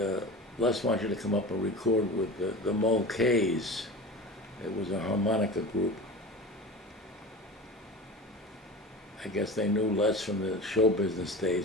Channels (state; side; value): normal; both; correlation 0.33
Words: Les wants you to come up and record with the Mulcahy's. It was a harmonica group. I guess they knew Les from the show business